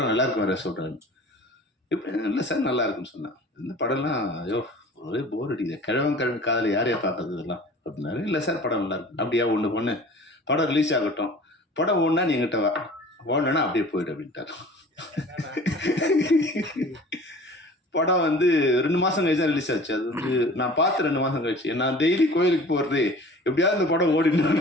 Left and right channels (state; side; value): normal; both; correlation 0.44